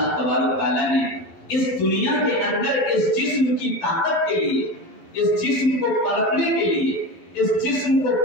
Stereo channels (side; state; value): right; late; 12 ms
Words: تبارک و تعالیٰ نے اس دنیا کے اندر اس جسم کی طاقت کے لیے، اس جسم کو پلٹنے کے لیے، اس جسم کو